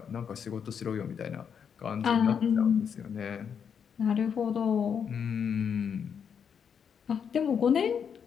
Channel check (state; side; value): quieter; right; 7.3 dB